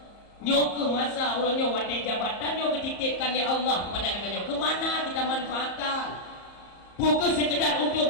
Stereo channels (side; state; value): right; late; 34 ms